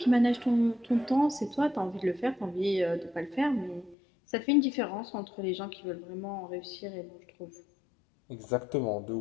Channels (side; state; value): right; drops out; at 4.0 s